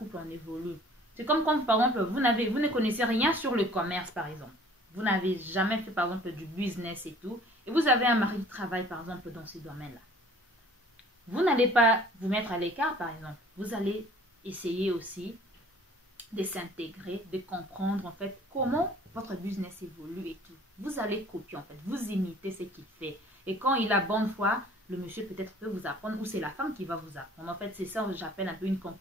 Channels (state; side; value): normal; both; correlation 0.52